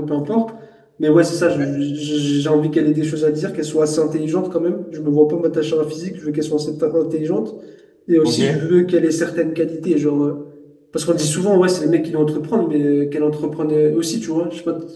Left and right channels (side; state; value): both; identical; correlation 1.00